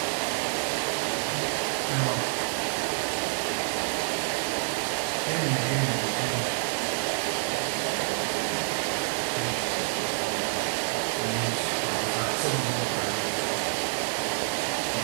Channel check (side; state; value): left; silent; 59 dB below the other